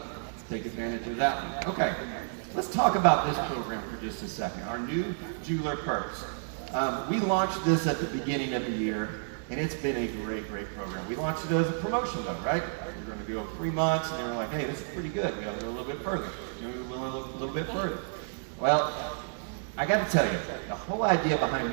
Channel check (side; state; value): left; silent; digital silence